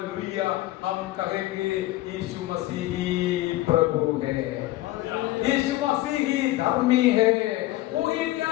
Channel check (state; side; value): quieter; right; 17.0 dB